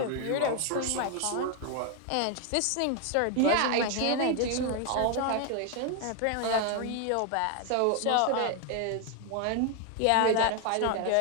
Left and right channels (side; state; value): both; different; correlation 0.01